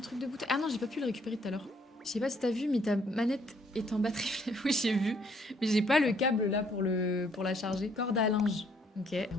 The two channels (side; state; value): both; normal; correlation 0.66